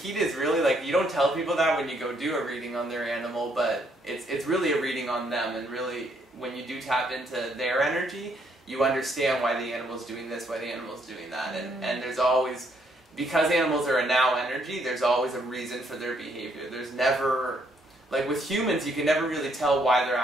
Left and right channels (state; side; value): normal; both; correlation 0.71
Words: is really, like, you don't tell people that when you go do a reading on their animal, but it's really a reading on them, and really, when you do tap into their energy, you understand why the animal's doing this, why the animal's doing that, and there's always, because animals are a now energy, there's always a reason for their behavior. There's never... Like with humans, you can never really tell why they're